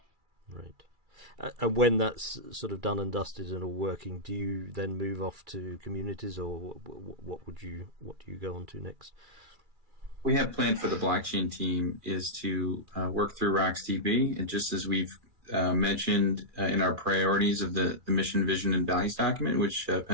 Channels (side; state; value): left; late; 2.4 ms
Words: Right. And when that's sort of done and dusted and all working, do you then move off to communities, or what do you go on to next? We have planned for the blockchain team is to work through RocksDB, and just as we've mentioned in our priorities of the mission, vision, and values document, which